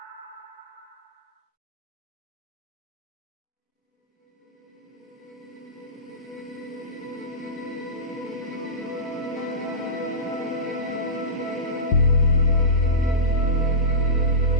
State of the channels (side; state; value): both; normal; correlation -0.17